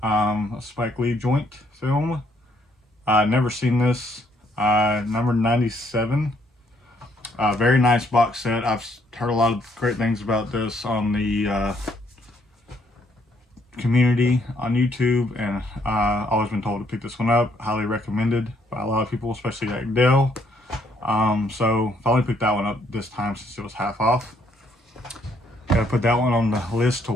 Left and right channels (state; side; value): normal; both; correlation 0.69